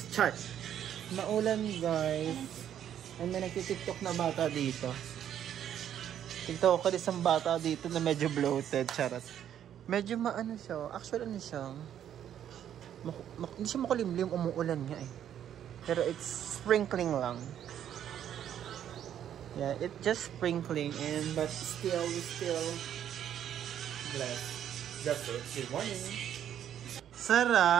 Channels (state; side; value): quieter; left; 10.1 dB